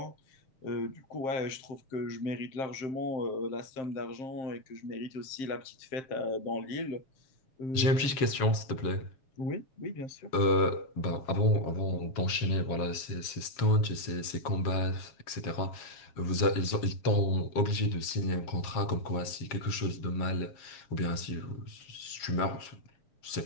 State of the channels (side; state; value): right; late; 7.3 ms